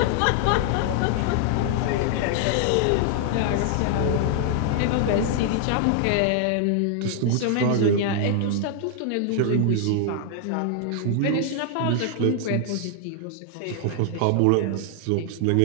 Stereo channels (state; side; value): different; both; correlation 0.00